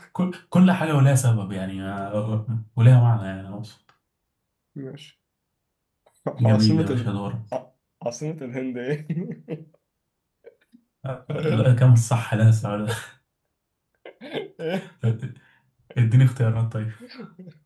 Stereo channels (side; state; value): both; identical; correlation 1.00